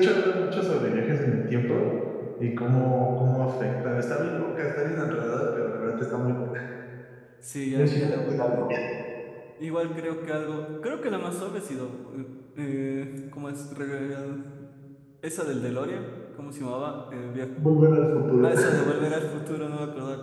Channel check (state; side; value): identical; both; correlation 1.00